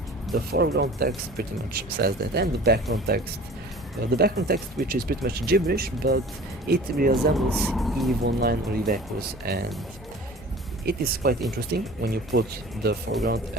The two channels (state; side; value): normal; both; correlation 0.43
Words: The foreground text pretty much says that, and the background text which is pretty much gibberish, but it resembles EVE Online or EVE Echoes, and it is quite interesting when you put the foreground